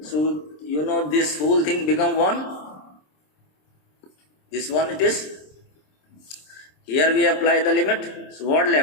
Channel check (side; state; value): right; late; 26 ms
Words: So you know this whole thing become 1, this one it is. Here we apply the limit. So what